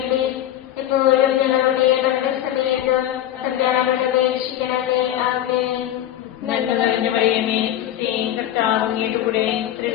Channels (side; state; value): right; quieter; 12.2 dB